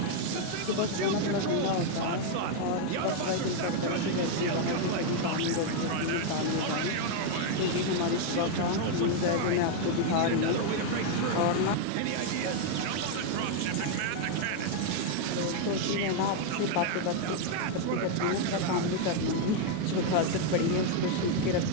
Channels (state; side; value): different; both; correlation 0.00